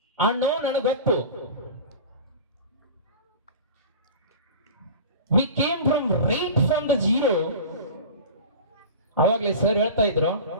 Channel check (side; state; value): both; inverted; correlation -0.35